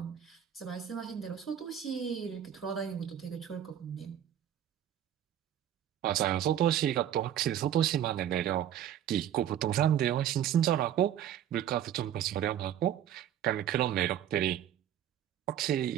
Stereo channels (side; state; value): left; quieter; 10.5 dB